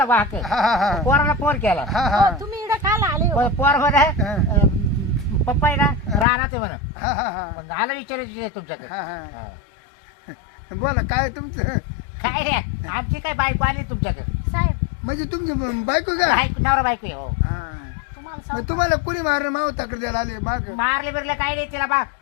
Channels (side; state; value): right; drops out; at 6.2 s